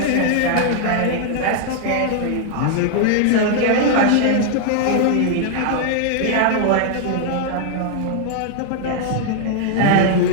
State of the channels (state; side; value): different; both; correlation -0.01